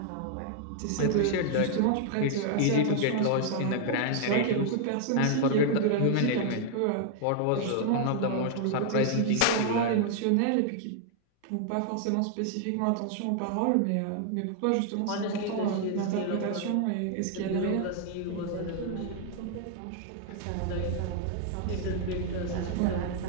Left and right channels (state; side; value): different; both; correlation 0.00